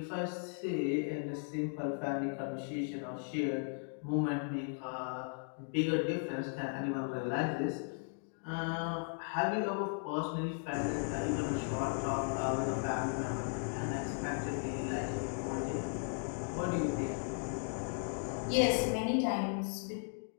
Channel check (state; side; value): silent; right; 53 dB below the other